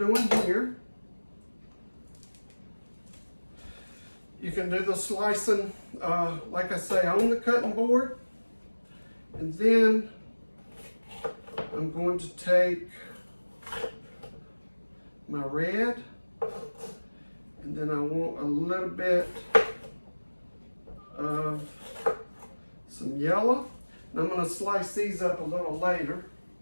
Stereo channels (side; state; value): both; inverted; correlation -1.00